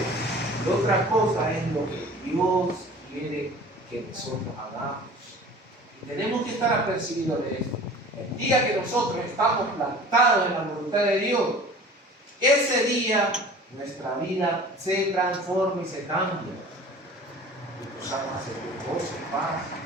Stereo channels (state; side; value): normal; both; correlation 0.43